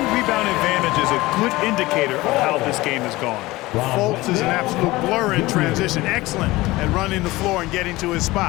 advantage is a good indicator of how this game has gone. Fultz is an absolute blur in transition. Excellent at running the floor and getting to his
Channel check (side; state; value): right; quieter; 19.6 dB